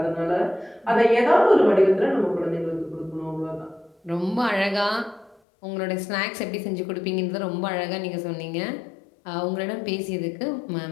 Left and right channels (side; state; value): right; drops out; at 5.4 s